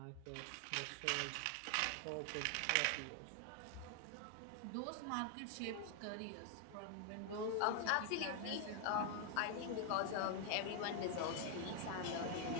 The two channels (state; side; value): different; both; correlation 0.00